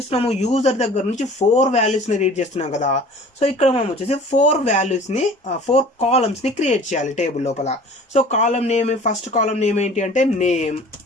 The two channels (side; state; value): both; normal; correlation 0.46